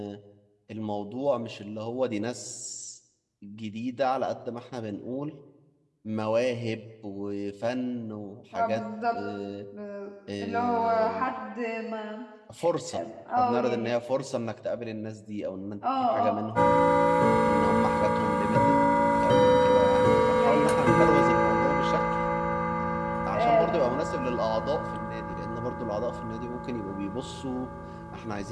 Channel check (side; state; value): both; identical; correlation 1.00